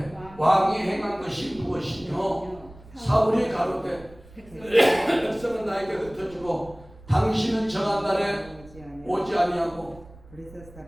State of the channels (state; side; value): noise; right; rumble, 22 dB below the sound